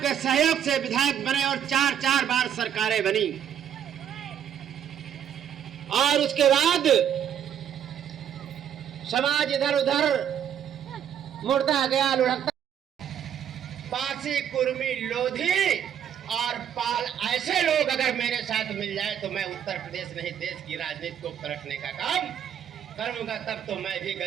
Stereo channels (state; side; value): quieter; left; 9.3 dB